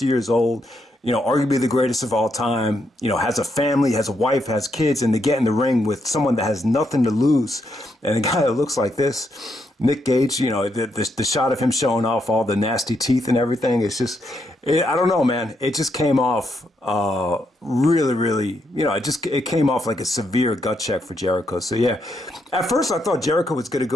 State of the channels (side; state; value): both; normal; correlation 0.78